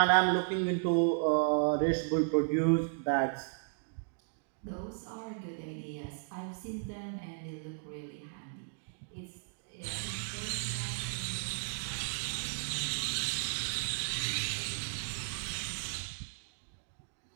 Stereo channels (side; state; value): left; silent; digital silence